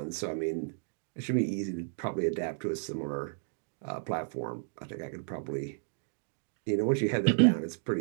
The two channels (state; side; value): silent; left; digital silence